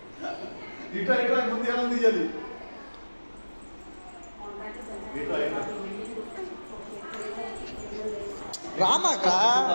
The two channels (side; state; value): both; inverted; correlation -1.00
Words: ఇట్లా ఇట్లా ముందు ఎలా తీయాలి రామాక